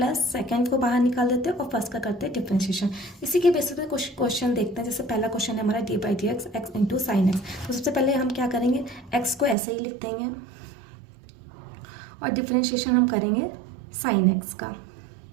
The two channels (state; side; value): drops out; left; at 9.6 s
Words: सेकंड को बाहर निकाल देते हैं और फर्स्ट का करते हैं डिफरेंशिएशन। इसी के बेसिस पे कुछ क्वेश्चन देखते हैं। जैसे पहला क्वेश्चन है हमारा D by D x x into sine X. तो सबसे पहले हम क्या करेंगे, एक्स को ऐसे ही लिख देंगे और डिफरेंशिएशन हम करेंगे साइन एक्स का।